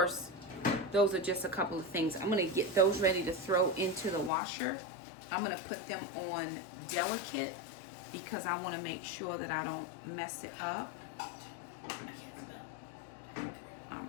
those are just a couple of things. I'm gonna get those ready to throw into the washer. I'm gonna put them on delicate because I wanna make sure that I don't mess it up.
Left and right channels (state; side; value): drops out; right; at 4.3 s